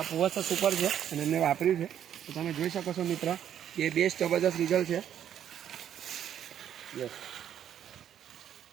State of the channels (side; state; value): left; quieter; 9.9 dB